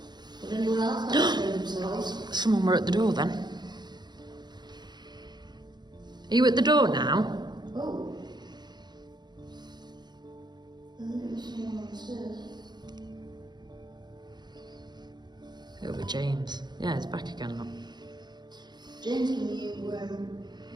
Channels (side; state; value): left; late; 0.21 ms